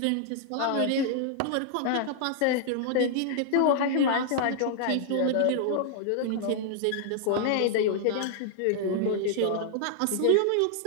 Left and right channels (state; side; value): different; both; correlation -0.01